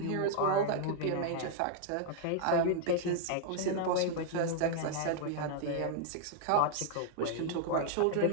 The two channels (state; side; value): different; both; correlation -0.01